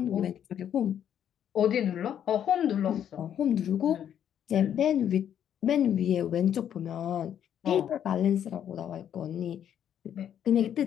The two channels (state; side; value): quieter; right; 9.6 dB